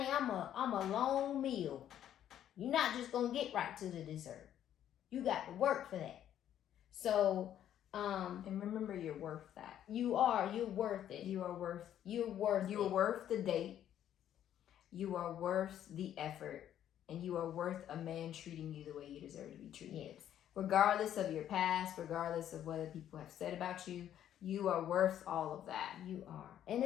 I'm a long meal. You're not just gonna get right to the dessert. You got to work for that. So, and remember, you're worth that. You're worth it. You're worth the date. You are worth the effort, and you are worth a man treating you the way you deserve to be treated. Yes. Regardless of your past, regardless of what people have said about you. You are worth all of that. You are. And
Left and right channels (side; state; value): right; quieter; 10.8 dB